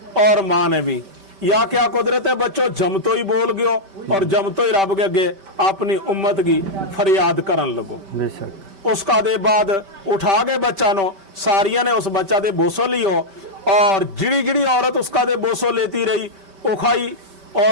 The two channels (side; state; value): left; late; 5.1 ms